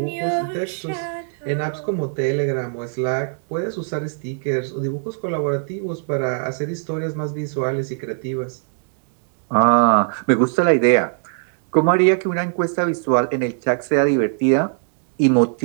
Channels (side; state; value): left; silent; digital silence